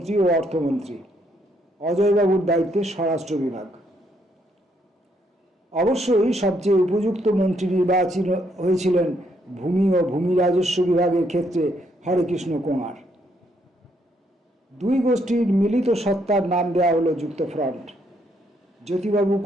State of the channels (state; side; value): normal; both; correlation 0.73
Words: ও অর্থমন্ত্রী। অজয়বাবুর দায়িত্বে স্বরাষ্ট্র বিভাগ। অবশ্যই সবচেয়ে উপযুক্ত মন্ত্রী নির্বাচিত হয়েছিলেন ভূমি ও ভূমি রাজস্ব বিভাগের ক্ষেত্রে হরেকৃষ্ণ কোঙার। দুই গোষ্ঠীর মিলিত সত্তার নাম দেওয়া হলো যুক্তফ্রন্ট। জ্যোতিবাবু